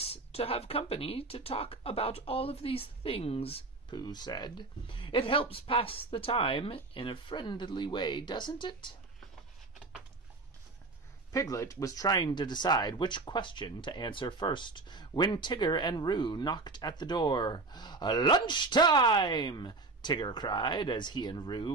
to have company to talk about all of these things, Pooh said. It helps pass the time in a friendly way, doesn't it? Piglet was trying to decide which question to answer first when Tigger and Roo knocked at the door. Lunchtime! Tigger cried as he and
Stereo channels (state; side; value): quieter; left; 3.5 dB